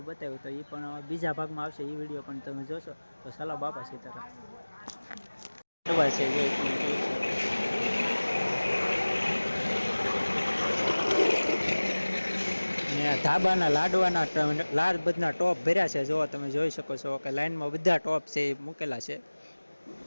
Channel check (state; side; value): inverted; both; correlation -1.00